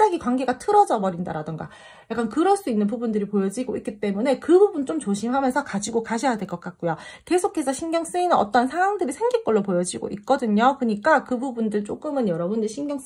관계가 틀어져 버린다라던가, 약간 그럴 수 있는 부분들이 보여지고 있기 때문에 그 부분 좀 조심하면서 가지고 가셔야 될 것 같고요. 계속해서 신경 쓰이는 어떤 상황들이 생길 걸로 보여지고 있거든요. 그러니까 그 부분들 조금은 여러분들 신경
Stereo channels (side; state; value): both; identical; correlation 1.00